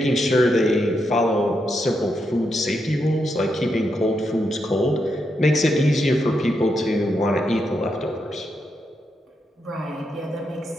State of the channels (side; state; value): both; normal; correlation 0.82